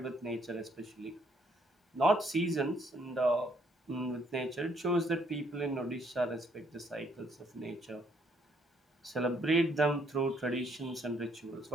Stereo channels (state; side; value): normal; both; correlation 0.68